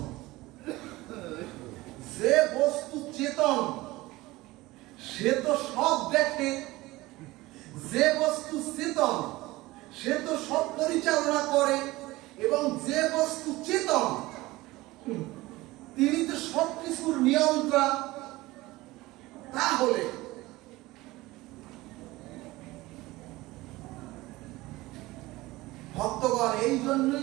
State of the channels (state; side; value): quieter; left; 19.5 dB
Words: যে বস্তু চেতন সে তো সব দেখে, যে বস্তু চেতন সে তো সব পরিচালনা করে এবং যে বস্তু চেতন তিনি তো সবকিছুর নিয়ন্ত্রণ। তাহলে ভক্তগণ, এই